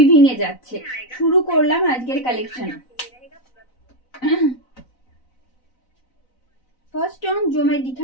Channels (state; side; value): late; right; 4.0 ms